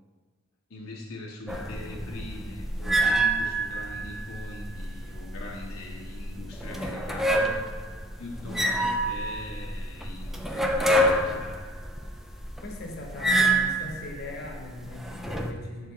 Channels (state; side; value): normal; both; correlation 0.56